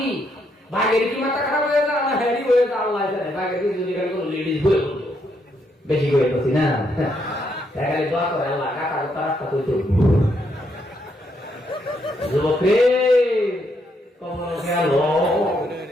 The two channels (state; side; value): normal; both; correlation 0.76